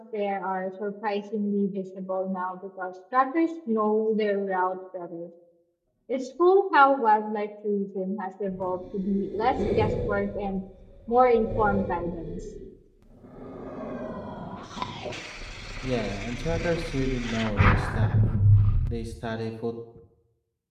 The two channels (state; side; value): identical; both; correlation 1.00